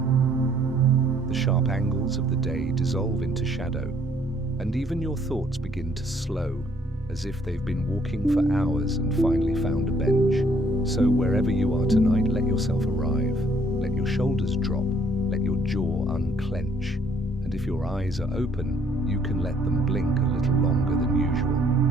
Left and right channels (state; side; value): normal; both; correlation 0.64